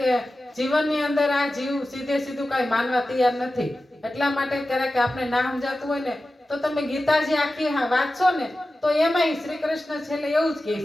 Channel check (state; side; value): normal; both; correlation 0.94